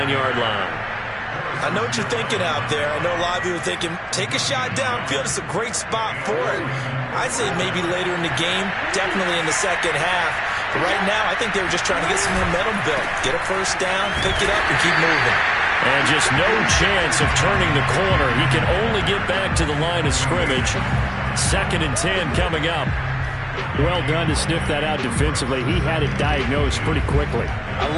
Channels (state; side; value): identical; both; correlation 1.00